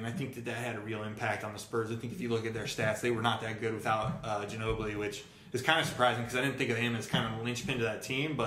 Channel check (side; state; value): both; identical; correlation 1.00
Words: I think that had a real impact on the Spurs. I think if you look at their stats, they were not that good without Ginobili, which is kind of surprising because I didn't think of him as kind of a linchpin to that team.